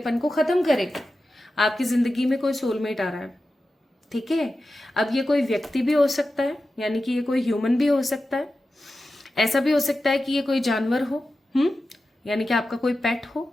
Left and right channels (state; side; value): normal; both; correlation 0.93